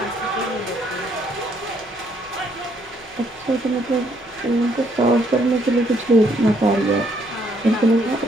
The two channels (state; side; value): noise; left; hum, 27 dB below the sound